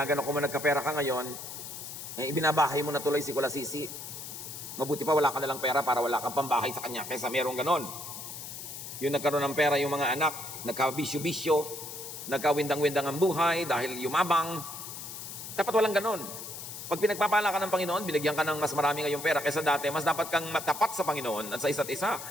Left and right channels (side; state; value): left; noise; hiss, 10 dB below the sound